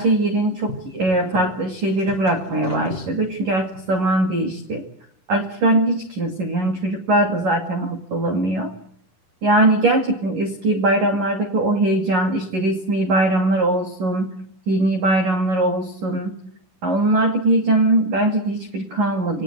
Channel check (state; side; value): late; left; 10 ms